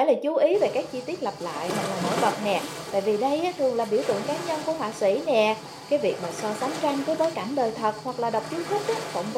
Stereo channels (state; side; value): identical; both; correlation 1.00